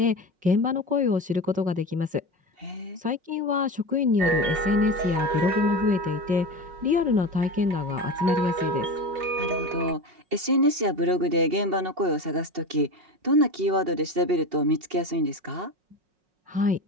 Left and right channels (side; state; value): left; late; 5.4 ms